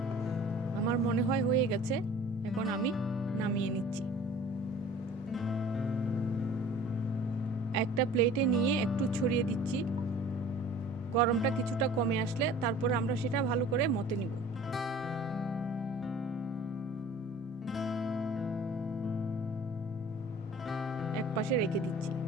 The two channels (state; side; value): normal; both; correlation 0.47